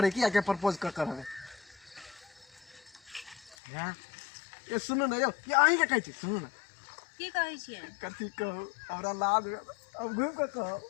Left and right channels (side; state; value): right; drops out; at 3.6 s